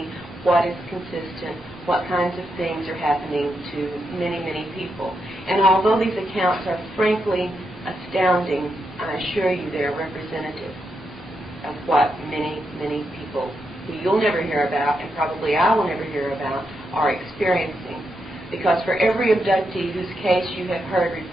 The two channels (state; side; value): normal; both; correlation 0.83